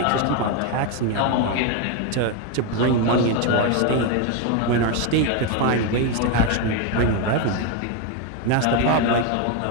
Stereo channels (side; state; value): both; different; correlation 0.02